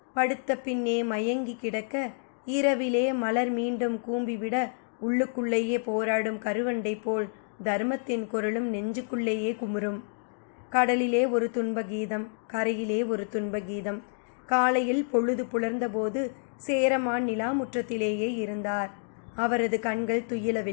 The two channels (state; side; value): silent; right; digital silence